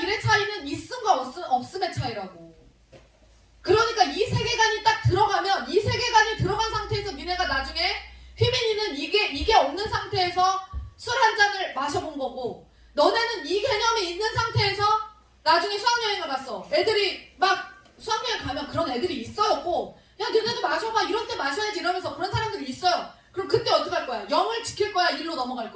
1의 차이는 있음과 없음의 차이라고. 그러니까 이 세계관이 딱 들어가면, 이 세계관이 들어간 상태에서 니네가 나중에 휘민이는 이게 없는 상태에서 술 한 잔을 마셔본 거고, 너네는 이 개념이 있는 상태에서 나중에 수학여행을 갔어. 애들이 막 수학여행 가면 그런 애들이 있어요. 야 너네도 마셔봐, 이런 때 마셔야지 이러면서 그런 사람들이 있어요. 그럼 그때 어떻게 할 거야? 0을 지킬 거야? 1로 넘어갈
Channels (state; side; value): identical; both; correlation 1.00